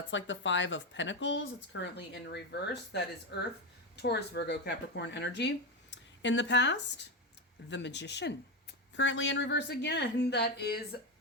like the 5 of Pentacles. It's currently in reverse. That is Earth, Taurus, Virgo, Capricorn energy. In the past, the Magician. Currently in reverse again. That is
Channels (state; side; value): normal; both; correlation 0.13